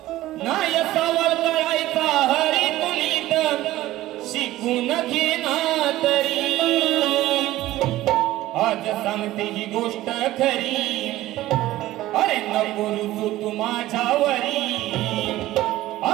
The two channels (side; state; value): left; quieter; 15.8 dB